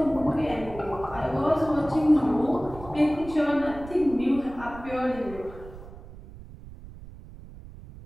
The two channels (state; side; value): noise; right; rumble, 16 dB below the sound